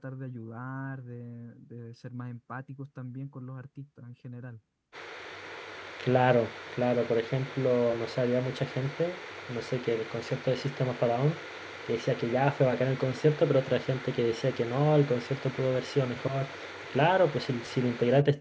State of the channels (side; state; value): both; identical; correlation 1.00